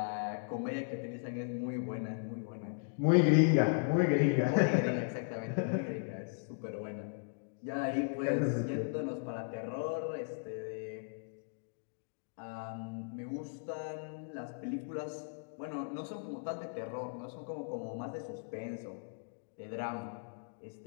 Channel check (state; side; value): silent; right; digital silence